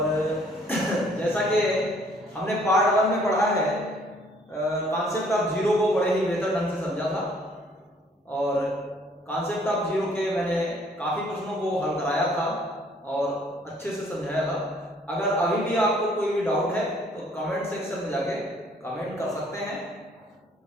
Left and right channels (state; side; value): normal; both; correlation 0.61